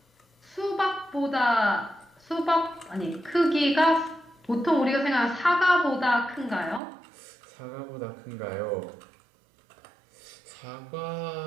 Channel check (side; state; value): left; drops out; at 6.8 s